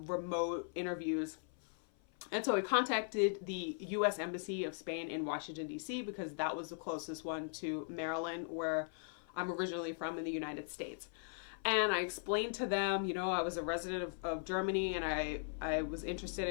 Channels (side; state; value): right; silent; 52 dB below the other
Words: remote interviews. And so I contacted the U.S. Embassy of Spain in Washington, D.C., because that was the closest one to Maryland, where I'm originally from in the United States. And I explained to them, you know, I was a resident of Germany, and I was interested